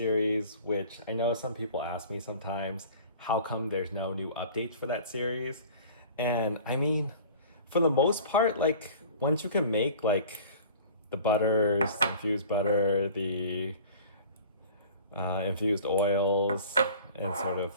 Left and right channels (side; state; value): both; inverted; correlation -0.45